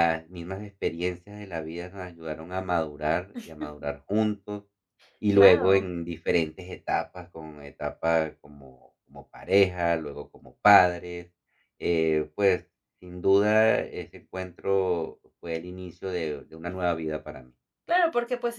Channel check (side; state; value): both; identical; correlation 1.00